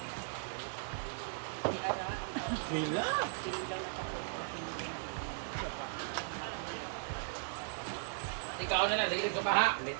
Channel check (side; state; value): left; silent; digital silence